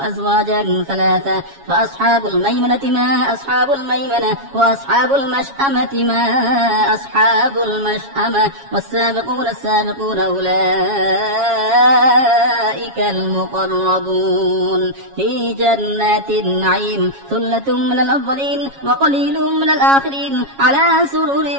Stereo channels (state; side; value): late; left; 7.3 ms